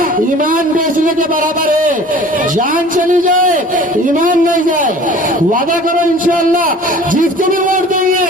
ईमान बेचने के बराबर है। जान चली जाए, ईमान नहीं जाए। वादा करो इंशाअल्लाह जिसको भी वोट देंगे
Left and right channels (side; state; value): both; normal; correlation 0.45